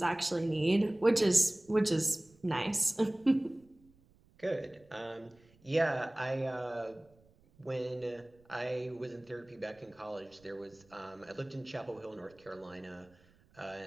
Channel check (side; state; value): right; noise; rumble, 30 dB below the sound